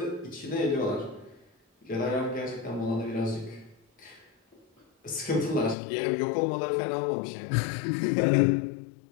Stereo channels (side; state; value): right; drops out; at 5.8 s